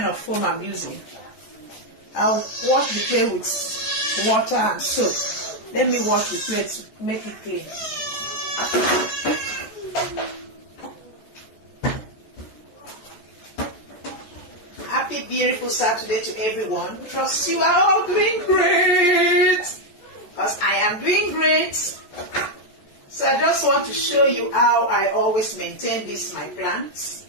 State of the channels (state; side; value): late; right; 14 ms